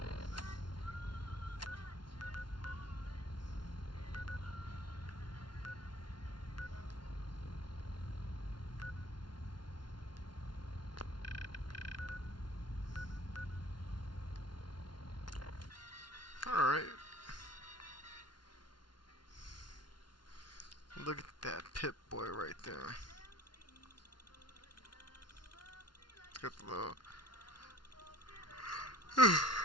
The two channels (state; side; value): late; right; 0.71 ms